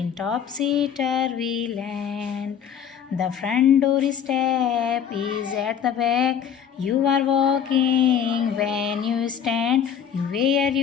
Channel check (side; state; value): right; quieter; 8.2 dB